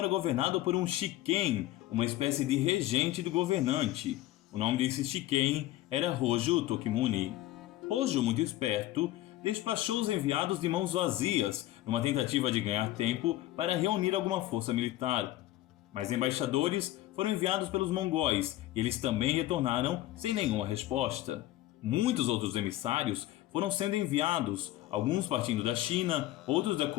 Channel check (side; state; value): right; quieter; 15.6 dB